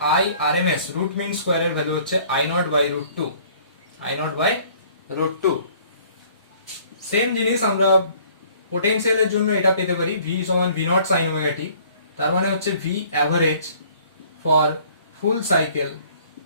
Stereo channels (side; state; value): both; inverted; correlation -0.56